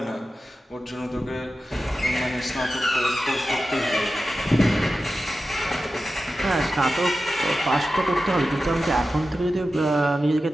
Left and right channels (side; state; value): both; normal; correlation 0.93